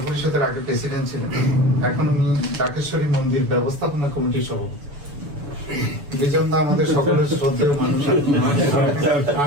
পরিষদের আগে প্রেসিডেন্ট ছিলেন, এখন উনি ডাকেশ্বরী মন্দির ব্যবস্থাপনা কমিটির সভাপতি। বিজন দা আমাদের সকলের শ্রদ্ধেয় মানুষ,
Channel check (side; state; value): left; late; 7.0 ms